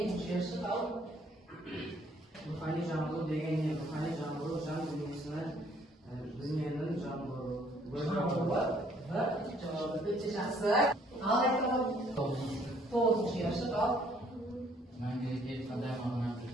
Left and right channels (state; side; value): normal; both; correlation 0.63